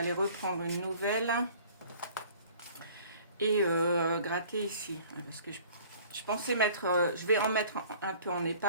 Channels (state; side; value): inverted; both; correlation -0.51